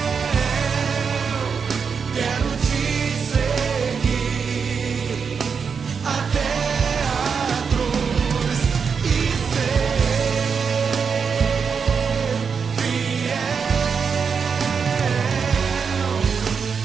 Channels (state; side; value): quieter; left; 6.0 dB